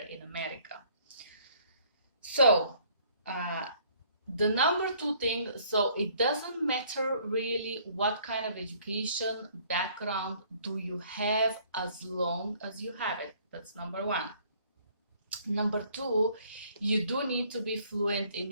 in America. So the number two thing, so it doesn't matter really what kind of education background do you have as long as you have it. That's number one. Number two, you do need to be fluent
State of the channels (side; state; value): both; inverted; correlation -0.60